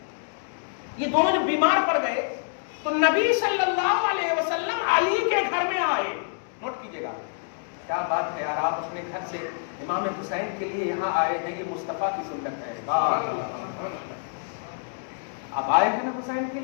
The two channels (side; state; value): right; silent; digital silence